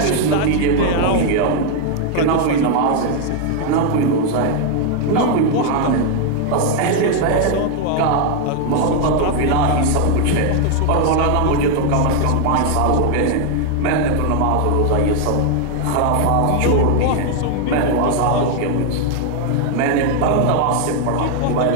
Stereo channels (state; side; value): different; both; correlation 0.00